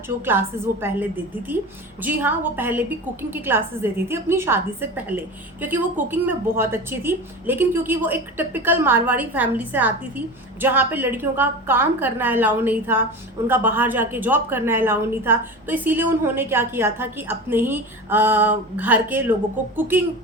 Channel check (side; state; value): both; normal; correlation 0.30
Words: जो क्लासेस वो पहले देती थी। जी हाँ, वो पहले भी कुकिंग की क्लासेस देती थी अपनी शादी से पहले, क्योंकि वो कुकिंग में बहुत अच्छी थी। लेकिन क्योंकि वो एक टिपिकल मारवाड़ी फैमिली से आती थी जहाँ पे लड़कियों का काम करना अलाउ नहीं था, उनका बाहर जाके जॉब करना अलाउ नहीं था, तो इसीलिए उन्होंने क्या किया था कि अपने ही घर के लोगों को कुकिंग